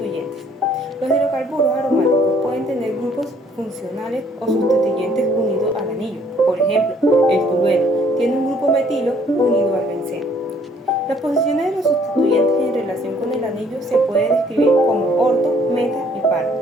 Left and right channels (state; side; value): normal; both; correlation 0.62